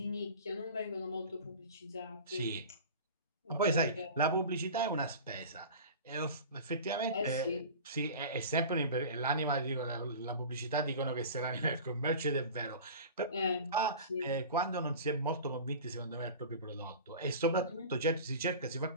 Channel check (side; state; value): both; inverted; correlation -0.36